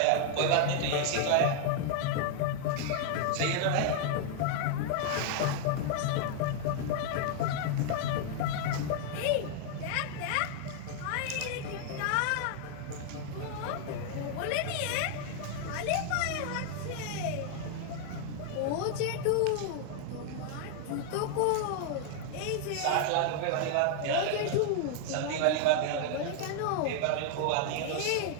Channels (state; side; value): different; both; correlation 0.00